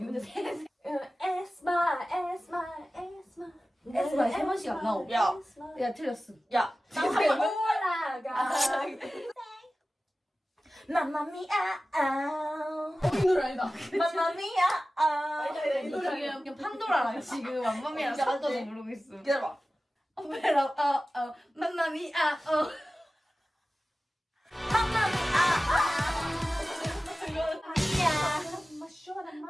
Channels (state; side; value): normal; both; correlation 0.96